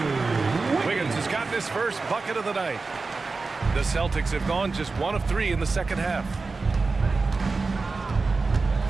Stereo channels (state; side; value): quieter; left; 4.0 dB